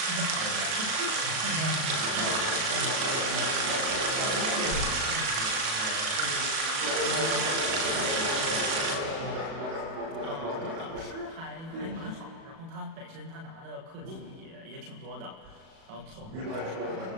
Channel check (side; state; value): left; late; 37 ms